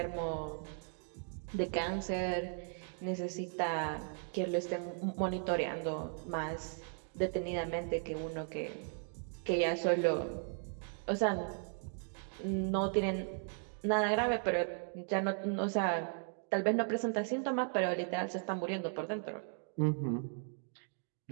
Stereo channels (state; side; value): silent; left; 53 dB below the other